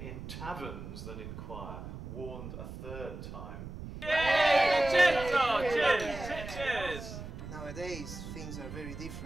taverns than in choir, warned a 3rd time. Yay! Vincenzo! Cheers! Cheers! Nowadays, things are very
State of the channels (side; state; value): right; noise; rumble, 10 dB below the sound